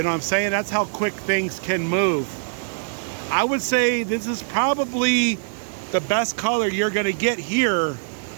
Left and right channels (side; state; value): left; silent; 63 dB below the other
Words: know what I'm saying? That's how quick things can move. I would say this is probably the best color you're gonna get here.